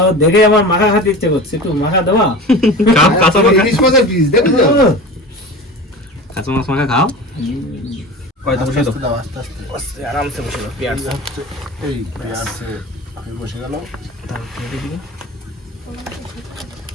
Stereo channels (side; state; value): both; normal; correlation 0.33